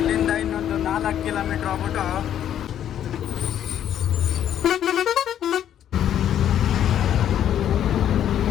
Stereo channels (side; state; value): right; quieter; 10.3 dB